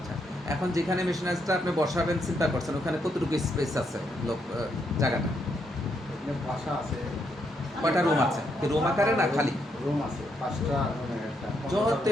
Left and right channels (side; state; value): both; normal; correlation 0.77